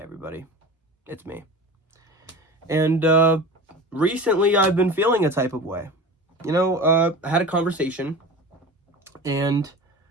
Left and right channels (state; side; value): normal; both; correlation 0.34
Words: everybody, it's me. And recently I've been feeling a type of way. I had a conversation, and